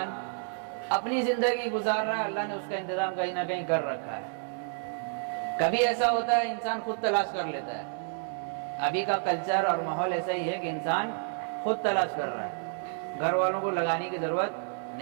اپنی زندگی گزار رہا ہے، اللہ نے اس کا انتظام کہیں نہ کہیں کر رکھا ہے۔ کبھی ایسا ہوتا ہے انسان خود تلاش کر لیتا ہے، ابھی کا کلچر اور ماحول ایسا ہی ہے کہ انسان خود تلاش کر رہا ہے، گھر والوں کو لگانے کی ضرورت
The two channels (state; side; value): silent; left; 58 dB below the other